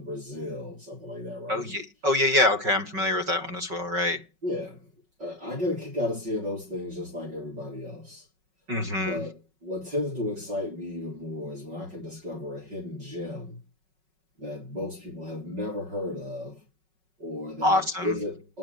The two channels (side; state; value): left; late; 5.4 ms